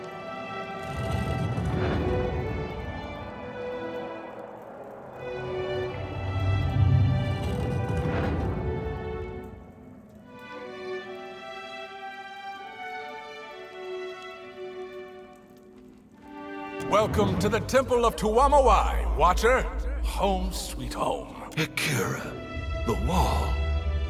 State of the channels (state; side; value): identical; both; correlation 1.00